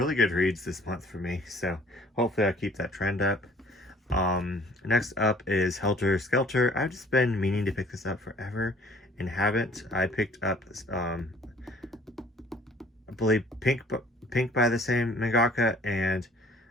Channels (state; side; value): normal; both; correlation 0.53